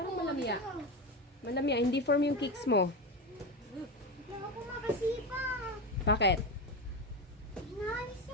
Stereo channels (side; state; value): both; normal; correlation 0.19